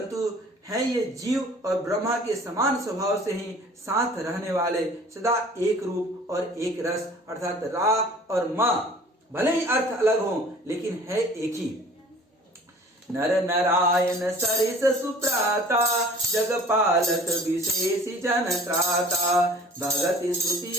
है ये जीव और ब्रह्मा के समान स्वभाव से ही साथ रहने वाले, सदा एक रूप और एक रस, अर्थात रा और मा भले ही अर्थ अलग हो लेकिन है एक ही। नर नारायण सरिस सुप्राता, जगपालक विशेष जन त्राता, भगति स्तुति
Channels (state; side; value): normal; both; correlation 0.48